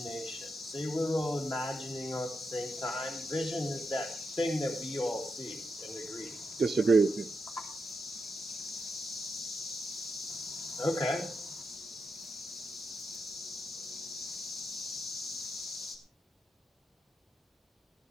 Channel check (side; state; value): both; normal; correlation 0.85